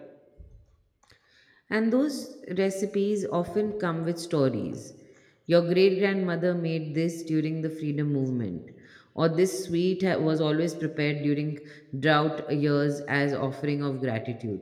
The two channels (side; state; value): both; identical; correlation 1.00